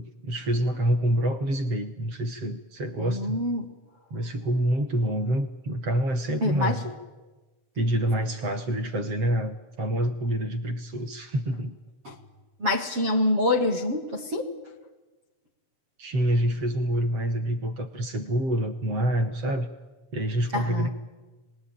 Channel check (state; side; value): late; left; 7.3 ms